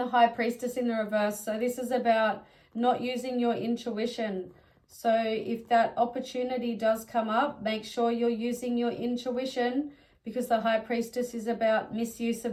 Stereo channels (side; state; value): both; identical; correlation 1.00